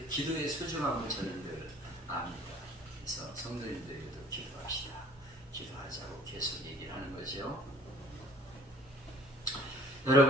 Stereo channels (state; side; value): normal; both; correlation 0.52